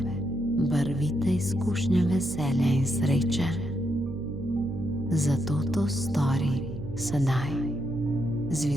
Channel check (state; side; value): noise; right; hum, 11 dB below the sound